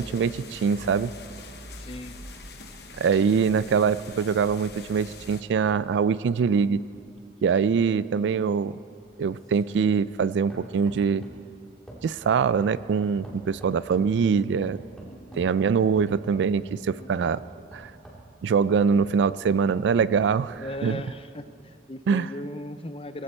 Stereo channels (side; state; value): left; quieter; 5.6 dB